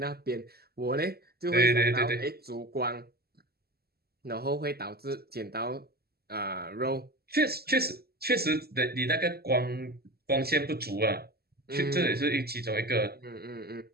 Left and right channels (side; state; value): left; late; 0.46 ms